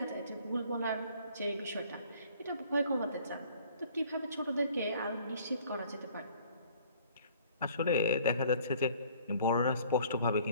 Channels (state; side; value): inverted; both; correlation -0.56